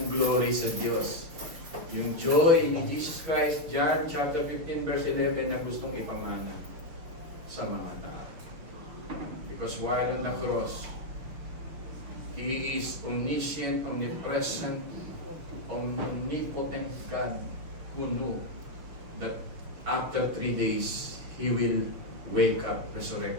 glory sa Diyos. Yung joy ni Jesus Christ, John chapter 15 verse 11 na gustong ipamana sa mga tao. Because while on the cross, He is omniscient, omnipresent, omnipotent God who knew that after 3 days, He will wake up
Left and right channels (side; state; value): left; late; 6.0 ms